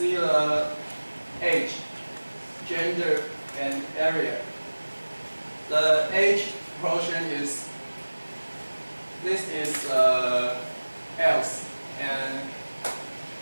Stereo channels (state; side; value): inverted; both; correlation -1.00